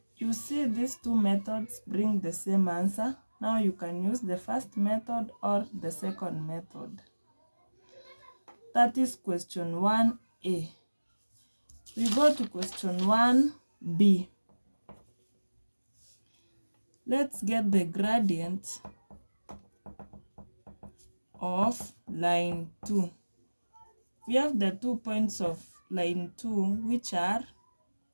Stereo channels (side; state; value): both; inverted; correlation -1.00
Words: You see, these two methods bring the same answer. Now you can use the first method or the second method. That is question 1a. We go to question 1b. Let's get the gradient of line 2. We have the 2 points of line 2, which are